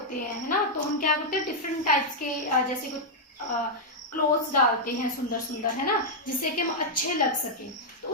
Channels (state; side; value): normal; both; correlation -0.04